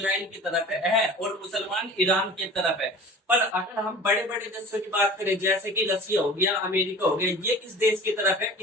की तरफ है और मुसलमान ईरान की तरफ है। पर अगर हम बड़े बड़े देशों की बात करें, जैसे कि रसिया हो गया, अमेरिका हो गया, ये किस देश की तरफ है,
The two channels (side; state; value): both; normal; correlation 0.40